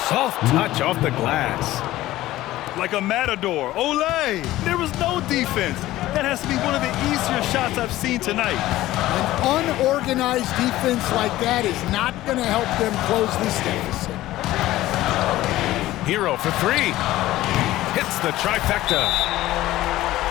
Soft touch off the glass. Like a matador. Olay! There was no defense. That has to be one of the easier shots I've seen tonight. An unorganized defense like that is not going to help them close this deficit. Hero for 3. Hits the trifecta.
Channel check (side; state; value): right; quieter; 15.9 dB